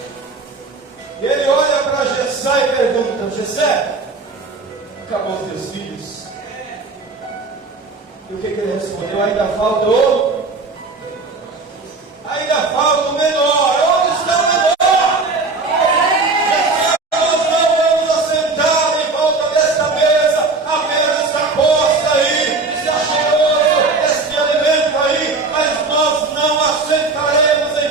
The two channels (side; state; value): left; quieter; 3.8 dB